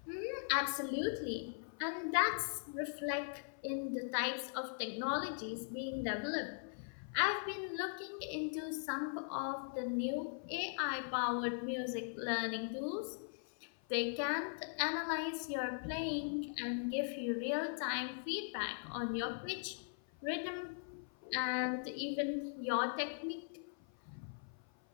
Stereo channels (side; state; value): right; silent; 51 dB below the other